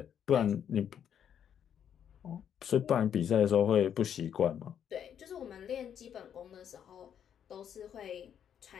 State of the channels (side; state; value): right; quieter; 8.9 dB